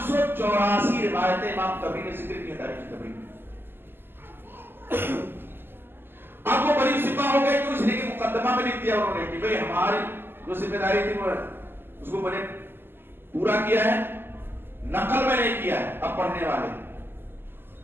روایتیں امام طبری نے ذکر کی تاریخ طبری. اب وہ بڑی سپاہ ہو گئے تو اس لیے کہ مقدمہ میں لکھ دیا انہوں نے کہ بھئی ہماری جو ذمہ داری تھی وہ اس کو میں نے پورا کیا ہے، نقل میں نہیں کیا ہے، اب پڑھنے والے.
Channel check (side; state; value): left; late; 0.10 ms